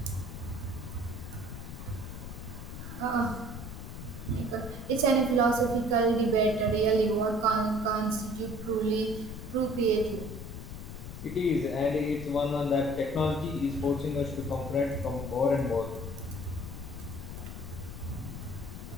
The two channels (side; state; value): left; noise; rumble, 9 dB below the sound